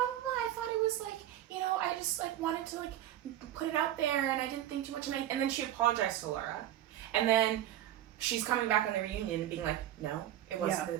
blah blah, I thought it was like, you know, I just like wanted to like put it out there and I didn't think too much, and then she apologized to Laura, and then she's coming back on the reunion and being like, no, it wasn't Yeah.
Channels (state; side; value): quieter; left; 12.3 dB